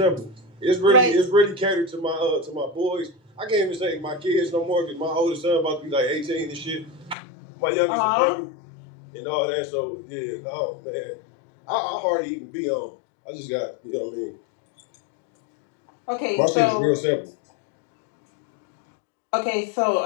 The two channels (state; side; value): drops out; right; at 7.2 s